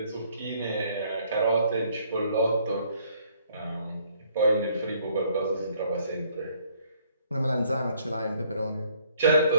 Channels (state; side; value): inverted; both; correlation -0.64